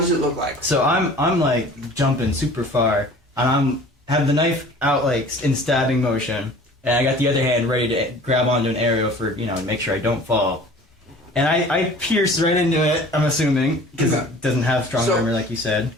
does it look like? so I'm like jumping super far, and have the knife out like in stabbing motion, and I got the other hand ready to grab onto an arrow for to make sure I don't fall. And I pierce right into it. I'm assuming because Okay. it doesn't have strong So- armor like you said.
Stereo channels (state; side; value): normal; both; correlation 0.46